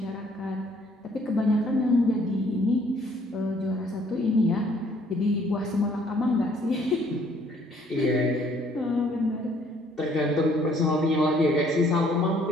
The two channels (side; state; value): both; normal; correlation 0.62